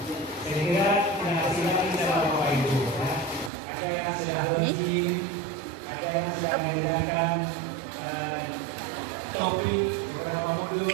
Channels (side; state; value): left; drops out; at 3.5 s